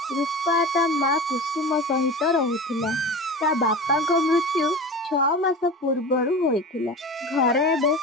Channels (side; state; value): both; normal; correlation 0.32